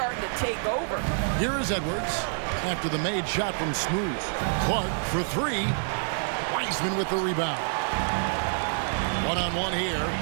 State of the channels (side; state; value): left; silent; 60 dB below the other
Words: to take over. Here is Edwards after the made shot from Smooth. Clark for 3. Wiseman with the rebound. One-on-one here.